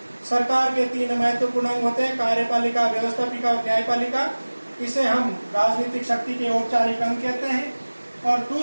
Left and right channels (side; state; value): both; inverted; correlation -1.00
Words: सरकार के 3 महत्वपूर्ण अंग होते हैं, कार्यपालिका, व्यवस्थापिका और न्यायपालिका। इसे हम राजनीतिक शक्ति के औपचारिक अंग कहते हैं। और